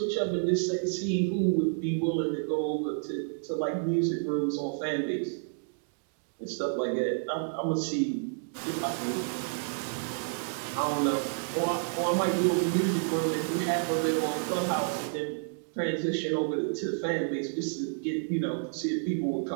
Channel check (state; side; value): silent; left; digital silence